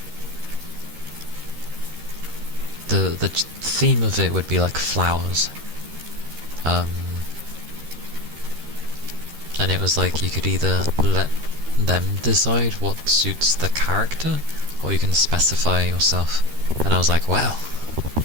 the theme of it would be like flowers. And it was like you could either let them decide what suits the character, or you can specify yourself. And I was like, wow,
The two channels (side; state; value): left; late; 13 ms